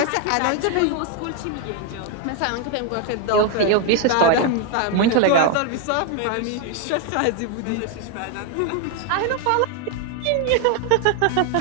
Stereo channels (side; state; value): both; different; correlation 0.01